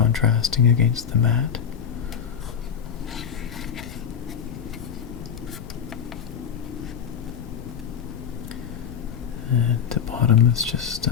against the matte. And the bottom is just it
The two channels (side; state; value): right; quieter; 7.7 dB